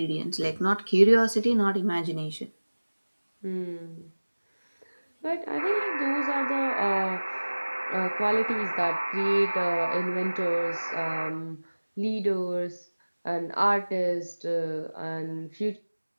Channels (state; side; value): inverted; both; correlation -1.00